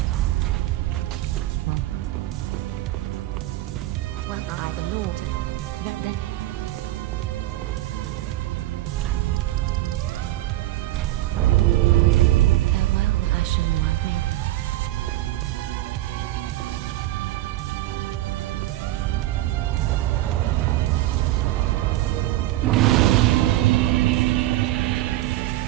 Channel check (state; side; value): quieter; left; 15.8 dB